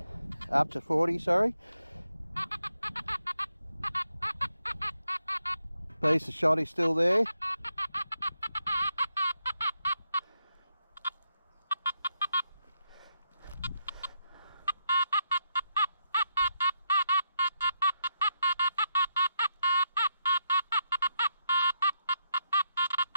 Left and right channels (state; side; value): inverted; both; correlation -0.80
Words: Up to 40, sorry. Piece of shotty still there.